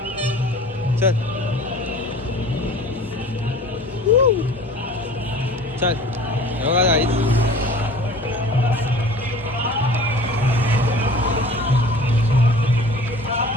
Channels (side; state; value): both; normal; correlation 0.44